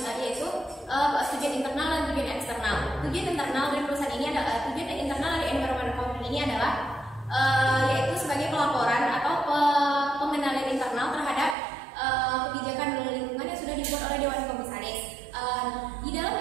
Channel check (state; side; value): drops out; left; at 11.6 s